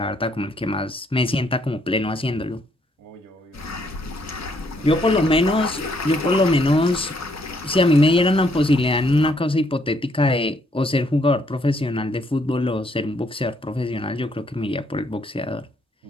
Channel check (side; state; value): both; normal; correlation 0.70